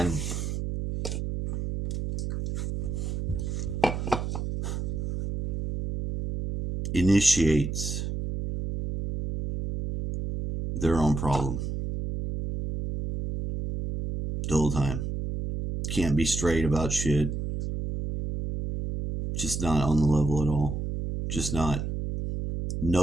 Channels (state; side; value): noise; right; hum, 3 dB below the sound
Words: initiates their own problem the whole time. Can't be straight about shit. Just not on the level at all. Just not.